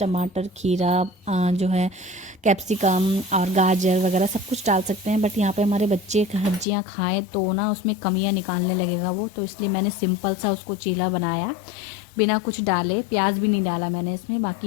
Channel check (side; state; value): right; drops out; at 6.7 s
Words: खीरा, जो है कैप्सिकम और गाजर वगैरह सब कुछ डाल सकते हैं। बट यहाँ पे हमारे बच्चे सब्जियाँ खाएँ तो ना उसमें कमियाँ निकालने लगेगा वो, तो इसलिए मैंने सिंपल सा उसको चीला बनाया बिना कुछ डाले। प्याज भी नहीं डाला मैंने इसमें।